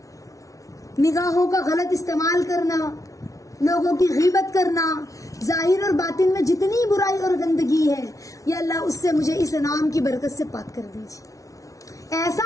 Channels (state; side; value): late; right; 0.17 ms